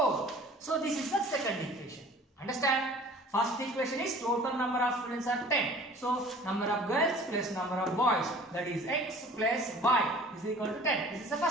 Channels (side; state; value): both; normal; correlation 0.47